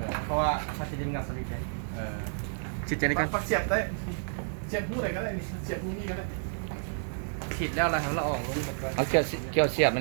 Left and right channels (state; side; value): silent; left; digital silence